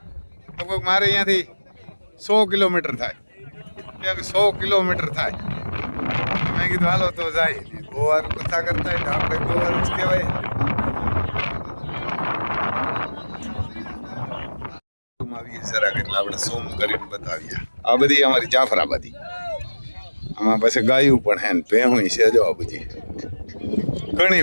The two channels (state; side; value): inverted; both; correlation -1.00